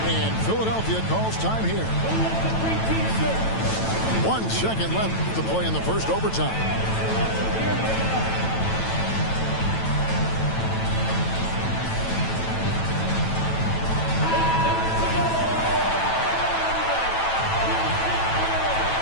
And Philadelphia calls time here. 1 second left to play in the first overtime.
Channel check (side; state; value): right; late; 9.1 ms